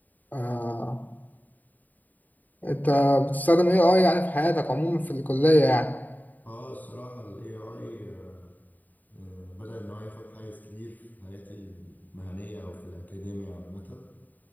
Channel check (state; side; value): late; right; 0.084 ms